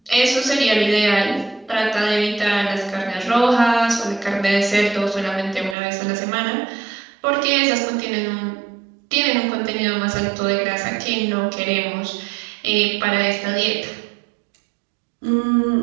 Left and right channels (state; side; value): drops out; left; at 5.8 s